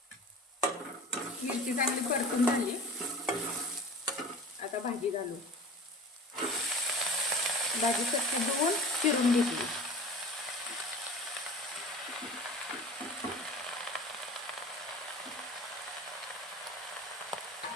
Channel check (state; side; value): normal; both; correlation 0.39